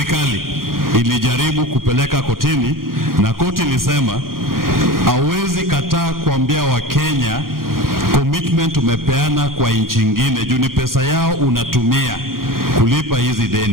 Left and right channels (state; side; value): late; left; 0.92 ms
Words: ilijaribu kupeleka kotini, na koti ilisema hawezi kataa kuambia Wakenya commitment umepeana kwa nchi nyingine, juu ni pesa yao unatumia kulipa hizi